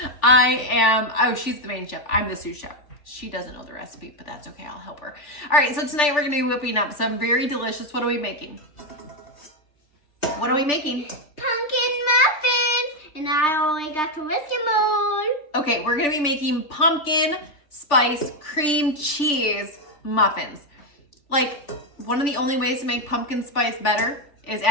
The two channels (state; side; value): late; right; 3.4 ms